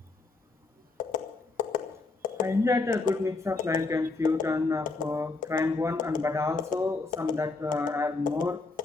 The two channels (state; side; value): quieter; right; 3.7 dB